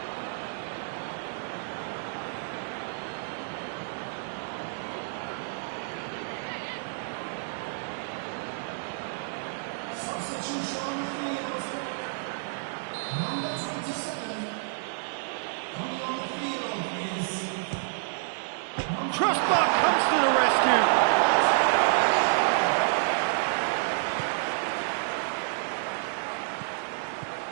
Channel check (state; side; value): silent; left; digital silence